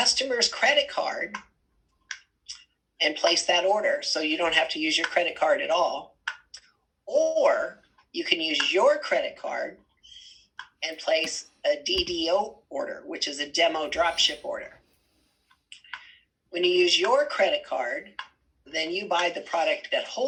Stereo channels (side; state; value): both; identical; correlation 1.00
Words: credit card and place that order, so you don't have to use your credit card at all, or you can use your credit card and place a DDO order, which is a demo dropship order. When you use your credit card, then you buy the product at